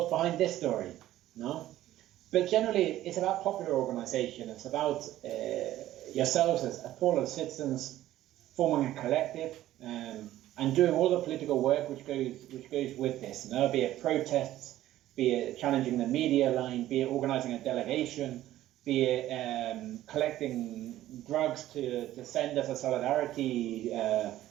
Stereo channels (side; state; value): left; quieter; 14.1 dB